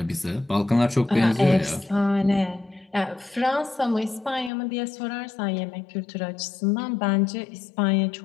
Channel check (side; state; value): right; drops out; at 4.5 s